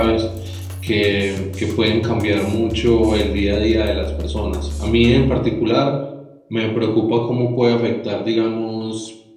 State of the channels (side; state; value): both; identical; correlation 1.00